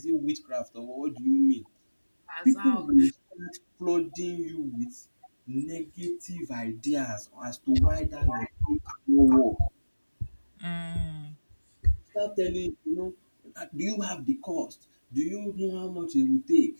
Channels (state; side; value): inverted; both; correlation -1.00